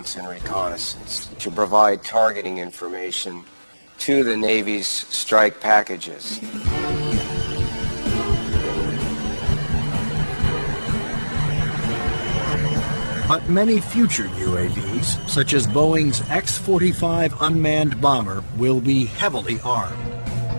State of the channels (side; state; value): both; inverted; correlation -1.00